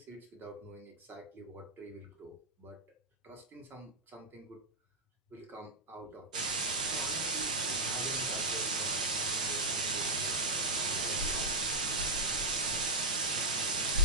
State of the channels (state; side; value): normal; both; correlation -0.07